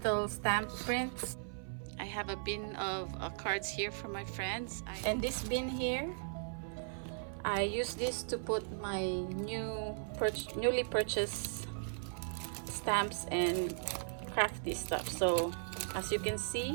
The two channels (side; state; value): left; silent; 53 dB below the other